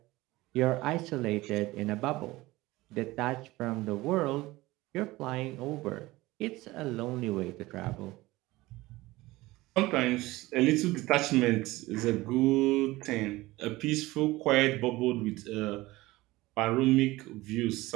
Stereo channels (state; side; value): quieter; left; 19.3 dB